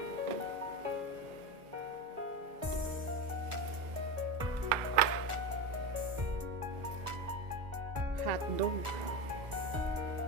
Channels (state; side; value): late; left; 1.4 ms